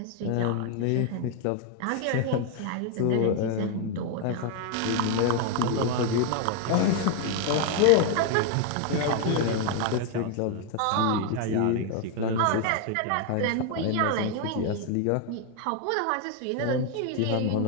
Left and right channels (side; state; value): both; different; correlation 0.01